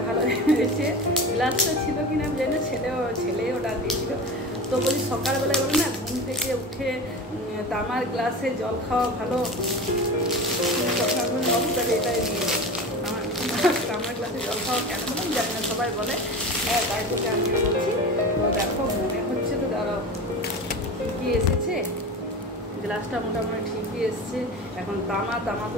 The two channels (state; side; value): normal; both; correlation 0.30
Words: ভালো হয়েছে। গ্লাসটা ছিল কিনা আমি জানি না, ছেলে অর্ডার দিয়েছিল। তো বলি সকালবেলায় বলি না ঘুম থেকে উঠে তামার গ্লাসে জল খাওয়া ভালো, সকালবেলা এটাই নিয়ে তামার গ্লাসে জল খাওয়া কেন বললাম জানি না, সবাই বলে, হ্যাঁ তাই তোকে আমি বলছি। তো দেখো মনে হচ্ছে তো দাঁড়াও ঠিকই এসেছে, গ্লাসটা মোটামুটি ঠিকই এসছে। এখন তামা তো